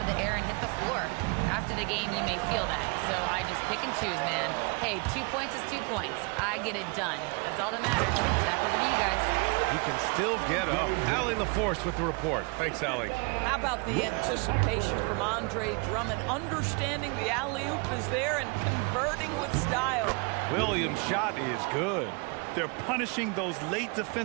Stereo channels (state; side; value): quieter; left; 31.7 dB